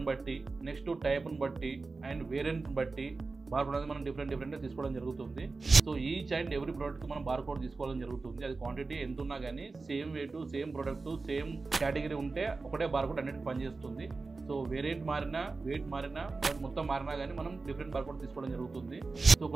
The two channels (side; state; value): left; quieter; 3.9 dB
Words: బట్టి, నెక్స్ట్ టైప్ని బట్టి అండ్ వేరియంట్ని బట్టి బార్ కోడ్ అనేది మనం డిఫరెంట్గా తీసుకోవడం జరుగుతుంది. సో ఈచ్ అండ్ ఎవ్రీ ప్రోడక్ట్కి మనం బార్ కోడ్ తీసుకోవడం జరుగుతుంది. అది క్వాంటిటీ ఎంత ఉన్నా కానీ same wait, same product, same category ఉంటే ఒకటే బార్ కోడ్ అన్నిటికీ పనిచేస్తుంది. సో వేరియంట్ మారినా, వెయిట్ మారినా, మొత్తం మారినా కానీ మనం డిఫరెంట్ బార్ కోడ్ తీసుకోవడం జరుగుతుంది. సో